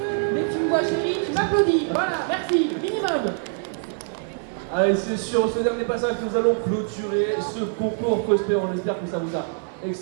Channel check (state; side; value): silent; left; 63 dB below the other